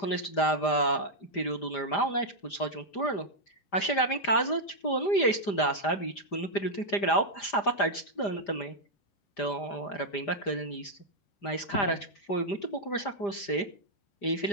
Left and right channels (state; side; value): late; right; 5.0 ms